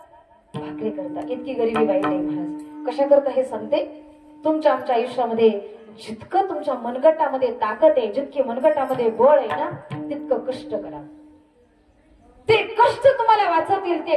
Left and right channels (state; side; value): identical; both; correlation 1.00